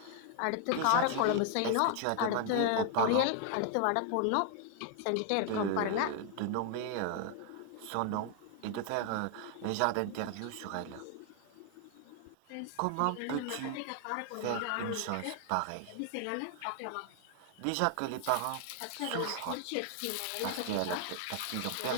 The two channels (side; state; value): both; different; correlation 0.00